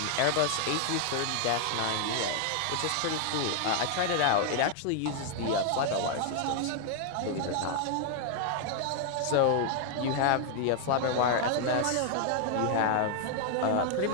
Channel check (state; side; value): different; both; correlation 0.00